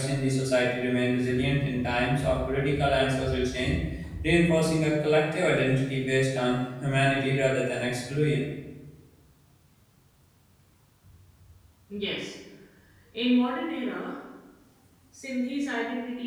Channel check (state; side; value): identical; both; correlation 1.00